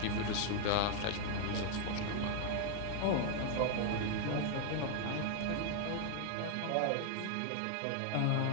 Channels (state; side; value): different; both; correlation 0.00